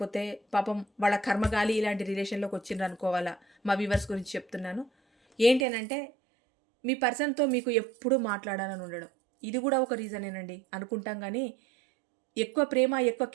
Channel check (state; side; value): drops out; left; at 5.7 s